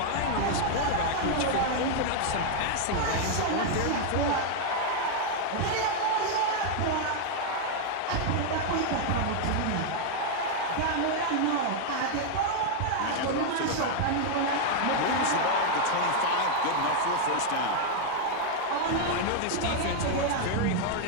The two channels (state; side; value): different; both; correlation 0.00